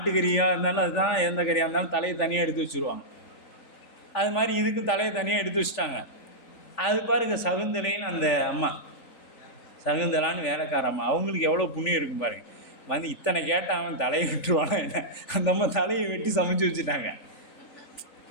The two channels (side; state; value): right; late; 3.5 ms